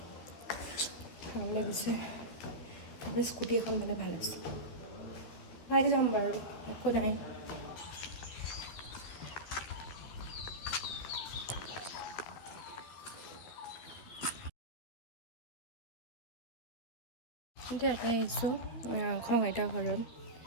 ভাল লাগিছে। তাৰপৰা স্কুটি এখন পালে ভাল আছে, পাই যাম বাৰু, একো নাই। এতিয়া ইয়াতে আহিছোঁ খং আইতাৰ ঘৰত।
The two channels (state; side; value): late; right; 13 ms